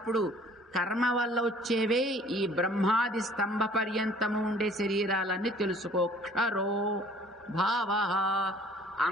కర్మ వల్ల వచ్చేవే ఈ బ్రహ్మాది స్తంభ పర్యంతము ఉండే శరీరాలన్నీ తెలుసుకో. క్షరో భావ,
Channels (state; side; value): normal; both; correlation 0.53